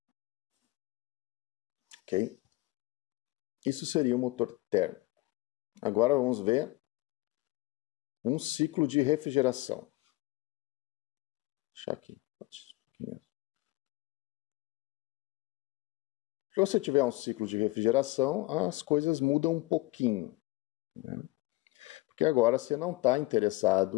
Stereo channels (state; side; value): quieter; right; 20.5 dB